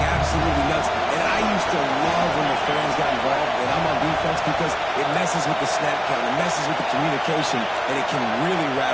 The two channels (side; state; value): both; identical; correlation 1.00